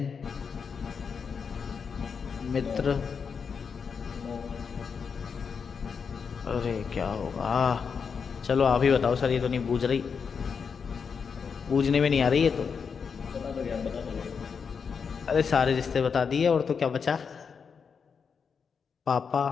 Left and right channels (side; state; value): right; quieter; 6.1 dB